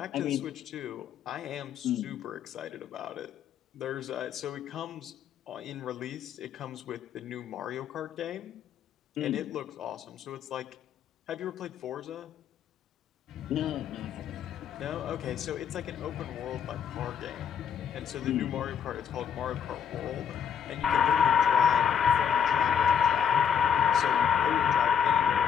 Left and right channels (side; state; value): right; quieter; 7.8 dB